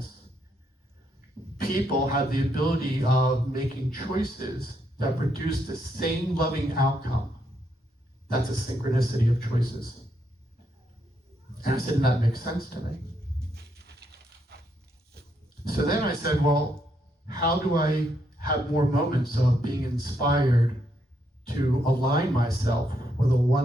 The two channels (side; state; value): both; normal; correlation 0.77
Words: People have the ability of making choices that produce the same loving outcome. That's a synchronicity of choices. And I said, and that makes sense to me. So then I said, well, how do I have more moments of being inspired to align myself with a